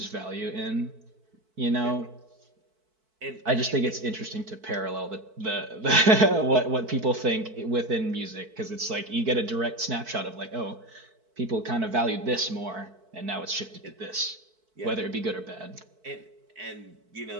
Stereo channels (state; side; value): late; left; 4.6 ms